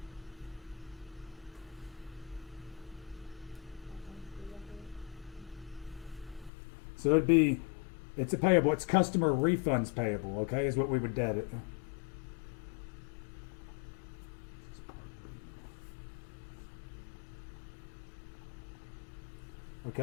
So it's a payable. It's customer refunds payable, okay, is what we would debit.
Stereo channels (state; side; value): drops out; right; at 6.5 s